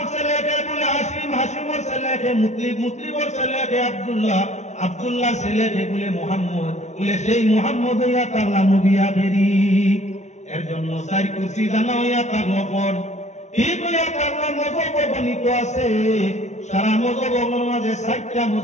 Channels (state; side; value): late; right; 0.33 ms